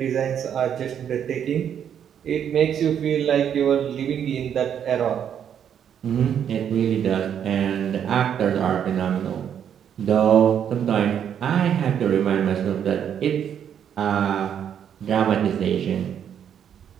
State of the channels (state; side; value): quieter; left; 8.8 dB